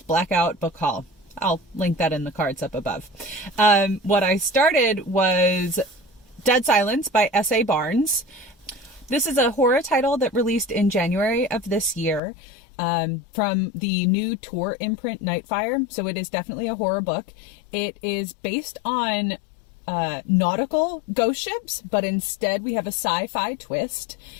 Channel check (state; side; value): drops out; right; at 12.2 s